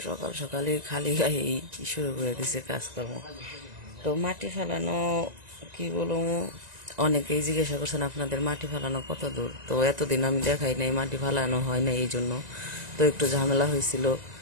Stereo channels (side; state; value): left; late; 1.9 ms